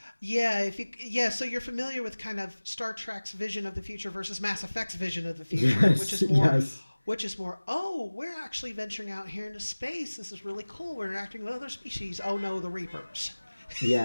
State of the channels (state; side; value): inverted; both; correlation -1.00